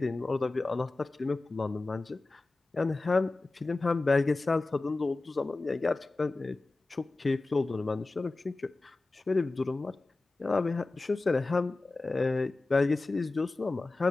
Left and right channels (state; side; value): quieter; right; 3.3 dB